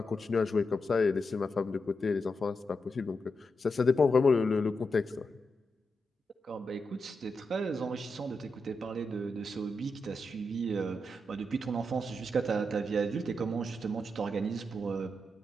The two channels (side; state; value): both; normal; correlation 0.86